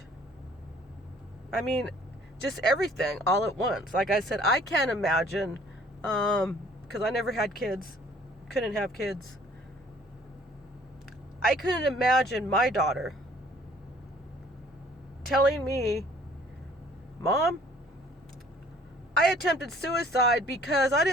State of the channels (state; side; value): normal; both; correlation 0.56